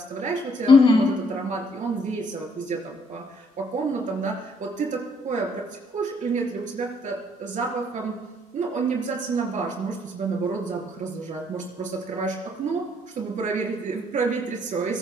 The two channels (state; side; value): normal; both; correlation 0.66